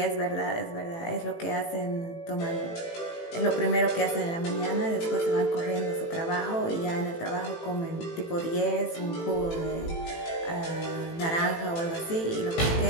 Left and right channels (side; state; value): right; late; 18 ms